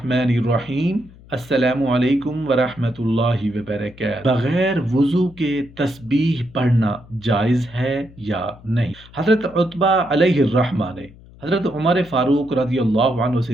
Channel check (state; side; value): noise; left; hum, 22 dB below the sound